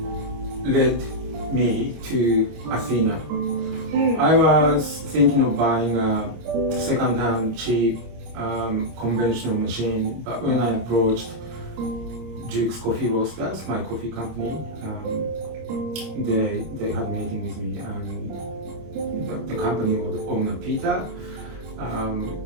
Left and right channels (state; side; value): late; left; 25 ms